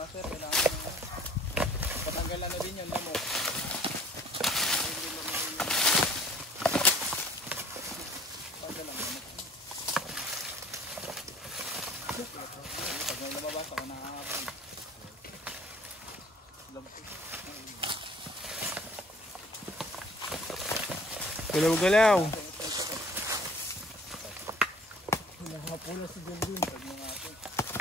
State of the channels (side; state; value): both; normal; correlation 0.53